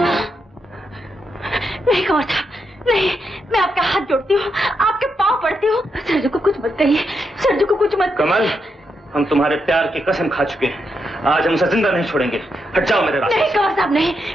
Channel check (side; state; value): both; normal; correlation 0.82